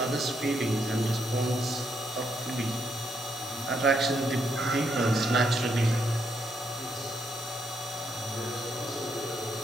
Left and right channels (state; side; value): normal; both; correlation 0.77